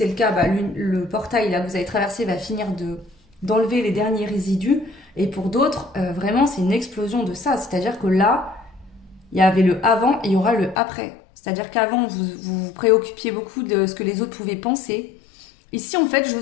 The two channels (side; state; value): right; drops out; at 10.8 s